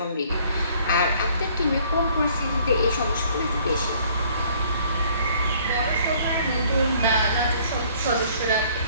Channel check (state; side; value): inverted; both; correlation -0.59